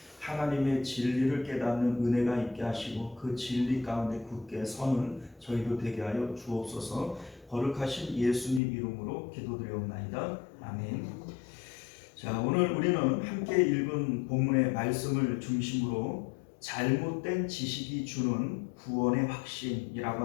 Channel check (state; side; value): drops out; right; at 8.6 s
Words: 하나님의 진리를 깨닫는 은혜가 있게 하시고 그 진리 가운데 굳게 서는 저희도 되게 하여 주옵소서. 거룩하신 예수님 이름으로 기도드리옵나이다. 아멘. 자, 오늘 우리는 함께 읽은 본문의 말씀을 중심으로 잘못된 지식이 주는 구원의